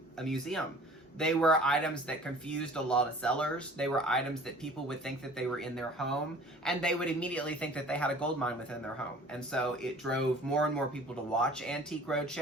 a museum. They were items that confused a lot of sellers. They were items that people would think that they were in their home, and they would immediately think that they had a gold mine within their home. And so it drove more and more people to watch Antique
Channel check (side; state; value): both; normal; correlation 0.47